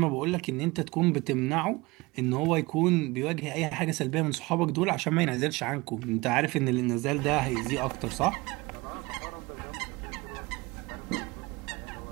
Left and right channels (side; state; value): left; quieter; 22.9 dB